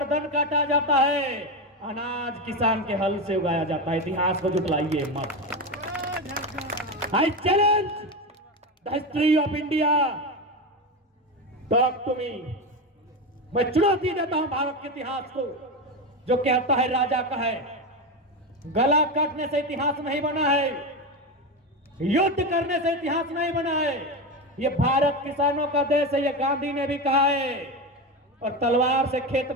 काटा जाता है, अनाज किसान के हल से उगाया जाता है। इतिहास को जुटलाइए मत। I challenge the history of India, talk to me. मैं चुनौती देता हूं भारत के इतिहास को, जो कहता है राजा का है। गला काटने से इतिहास नहीं बना है, युद्ध करने से इतिहास नहीं बना है। ये भारत किसानों का देश है, ये गांधी ने भी कहा है। और तलवार से खेत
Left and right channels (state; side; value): normal; both; correlation 0.17